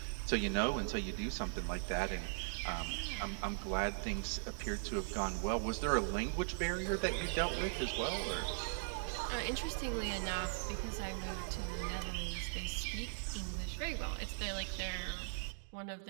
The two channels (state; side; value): silent; left; digital silence